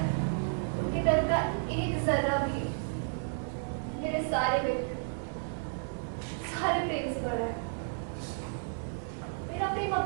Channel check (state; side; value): silent; left; digital silence